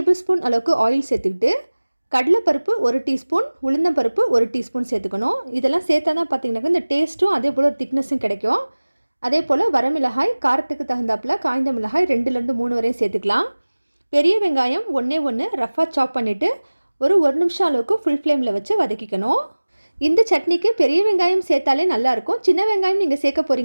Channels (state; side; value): inverted; both; correlation -1.00